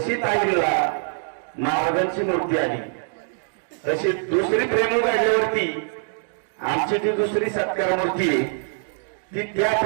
ताईला महाराजांची मूर्ती आली तशी दुसरी प्रेम काढल्यावरती आमची ती दुसरी सत्कार मूर्ती आहे ती त्या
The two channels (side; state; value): left; silent; digital silence